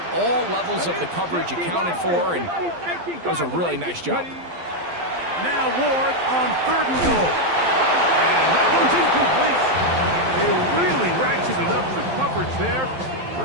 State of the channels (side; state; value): left; late; 12 ms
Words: all levels of the coverage accounted for, and it was a really nice job. Now Ward on 3rd and goal. And that one's incomplete. They really ratcheted up the coverage there.